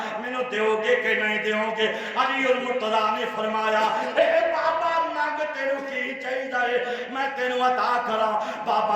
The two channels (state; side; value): identical; both; correlation 1.00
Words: میں نو دیو گے کہ نہیں دیو گے؟ علی المرتضیٰ نے فرمایا اے بابا مانگ تینو کی چاہیے میں تینو عطا کرا۔